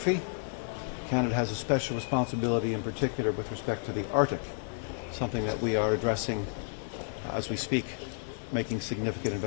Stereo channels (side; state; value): right; silent; digital silence